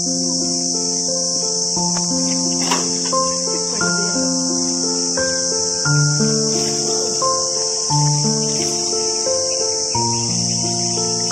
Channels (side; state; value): right; noise; rumble, 30 dB below the sound